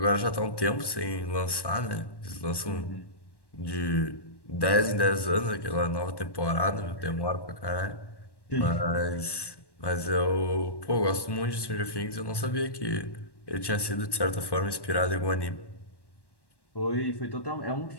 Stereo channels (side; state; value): right; late; 1.1 ms